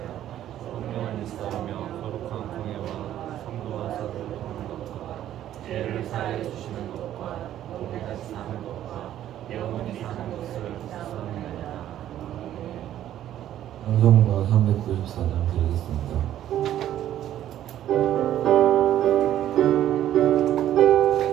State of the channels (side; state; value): left; quieter; 11.9 dB